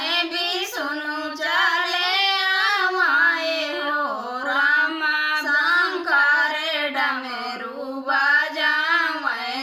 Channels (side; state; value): both; identical; correlation 1.00